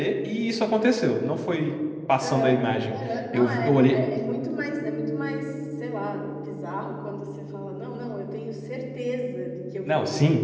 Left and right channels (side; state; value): both; identical; correlation 1.00